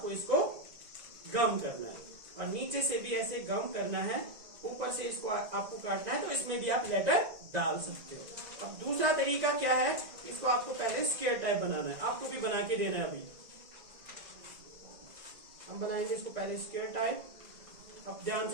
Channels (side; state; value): left; late; 2.0 ms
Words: इसको गम करना है और नीचे से भी ऐसे गम करना है, ऊपर से इसको आपको काटना है, तो इसमें भी आप लेटर डाल सकते हो। अब दूसरा तरीका क्या है, इसको आपको पहले स्क्वायर टाइप बनाना है, आपको भी बना के देना है। अभी हम बनाएंगे इसको पहले स्क्वायर टाइप। अब ध्यान